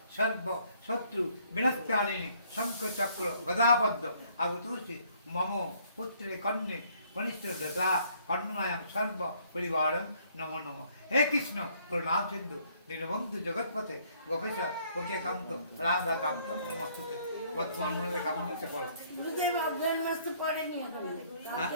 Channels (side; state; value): both; inverted; correlation -0.64